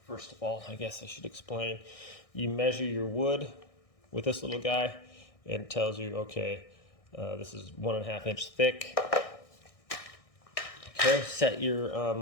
First of all, I guess I should explain. You measure your wood with this little guy, and it tells you, okay, this is 1.5 inch thick. Okay, set your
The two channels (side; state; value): right; late; 1.6 ms